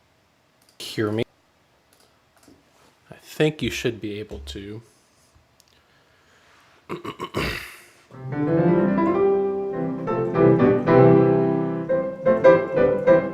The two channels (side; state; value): both; identical; correlation 1.00